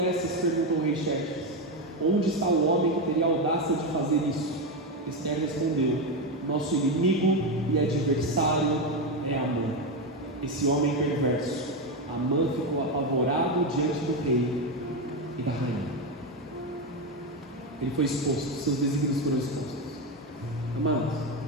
Perguntou o rei Xerxes. Onde está o homem que teria a audácia de fazer isso? Esther respondeu: nosso inimigo e adversário é Amã, esse homem perverso. Amã ficou apavorado diante do rei e da rainha. Ele foi exposto, seus desígnios foram expostos. Amados,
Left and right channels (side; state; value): both; normal; correlation 0.11